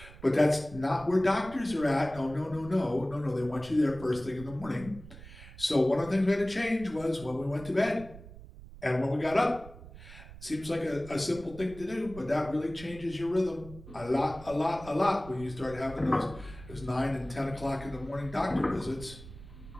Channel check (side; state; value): right; noise; rumble, 16 dB below the sound